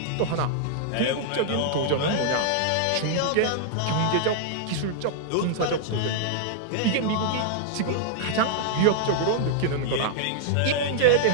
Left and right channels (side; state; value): both; different; correlation -0.01